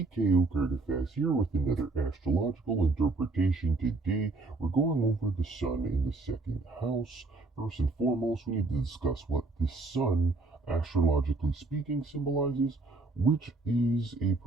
here with another astrological interpretation. Today, we're going over the sun in the second house. First and foremost, we need to discuss what the sun, astrologically speaking, symbolizes, which is a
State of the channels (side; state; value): left; quieter; 3.5 dB